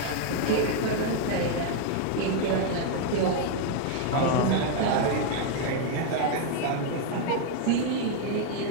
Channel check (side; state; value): both; different; correlation 0.00